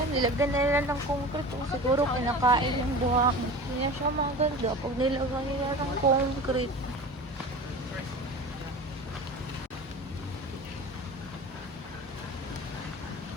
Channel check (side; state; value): both; normal; correlation 0.35